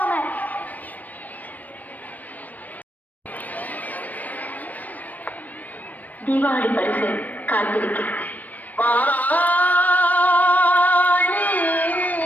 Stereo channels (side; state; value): right; late; 0.080 ms